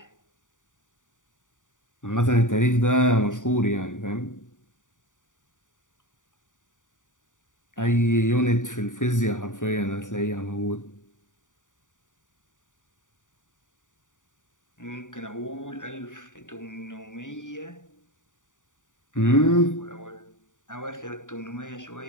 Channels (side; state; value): right; late; 0.87 ms